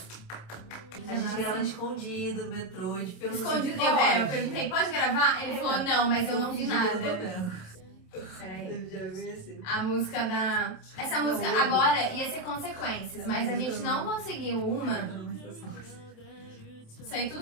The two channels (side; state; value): right; late; 27 ms